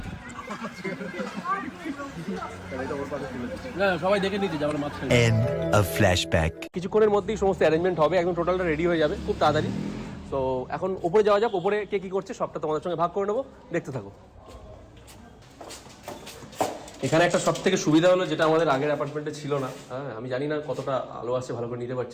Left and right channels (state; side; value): identical; both; correlation 1.00